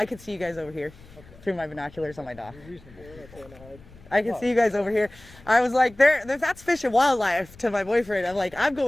could see you guys over here through my binoculars on my dock. I can see you guys over here. I was like, that's Fish and Wildlife to my boyfriend. I'm like, I'm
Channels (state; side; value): noise; left; rumble, 22 dB below the sound